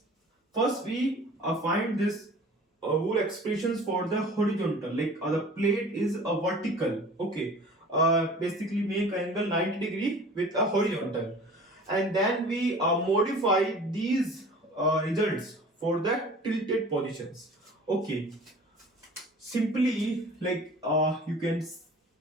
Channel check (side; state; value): both; normal; correlation 0.44